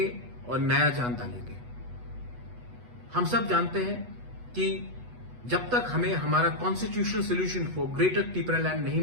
और नया जान डालेंगे। हम सब जानते हैं कि जब तक हमें हमारा constitutional solution for greater Tripura land नहीं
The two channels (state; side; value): late; left; 8.2 ms